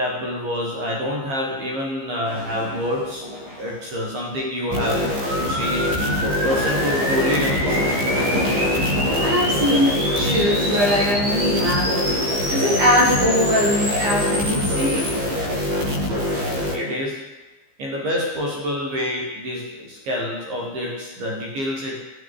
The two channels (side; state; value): left; late; 15 ms